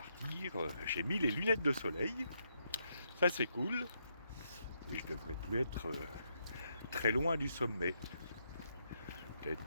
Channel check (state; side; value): inverted; both; correlation -0.78